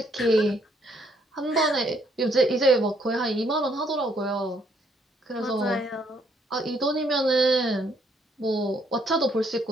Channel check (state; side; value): normal; both; correlation 0.69